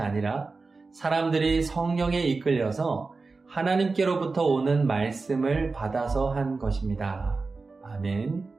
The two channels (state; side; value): quieter; left; 4.0 dB